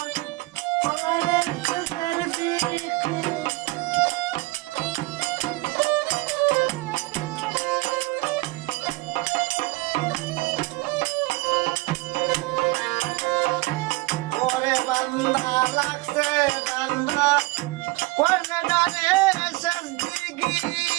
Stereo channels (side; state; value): left; quieter; 22.6 dB